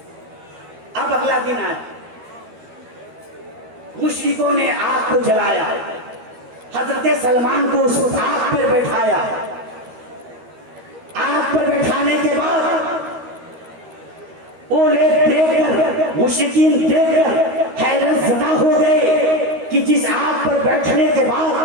अब अगला दिन आया, मुश्रिकों ने आग को जलाया, हजरत सलमान को उस आग पर बैठाया। आग पर बैठाने के बाद वो लोग देखकर, मुश्रिकीन देखकर हैरत ज़दा हो गए कि जिस आग पर बैठने के बाद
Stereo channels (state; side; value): late; left; 13 ms